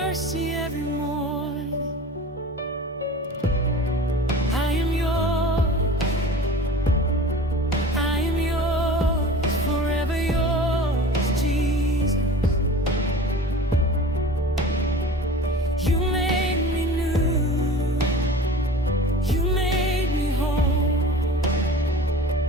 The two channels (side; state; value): both; normal; correlation 0.39